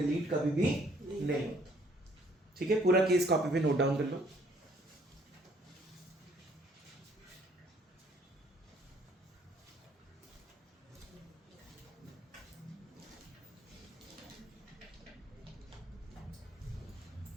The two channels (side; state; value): both; normal; correlation 0.62